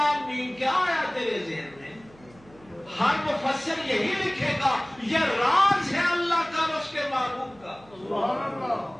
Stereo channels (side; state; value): right; noise; hum, 26 dB below the sound